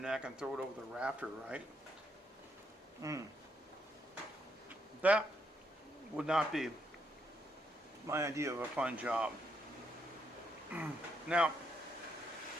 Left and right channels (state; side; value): normal; both; correlation 0.76